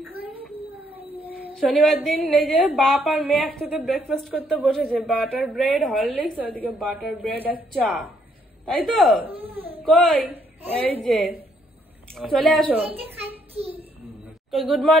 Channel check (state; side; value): normal; both; correlation 0.70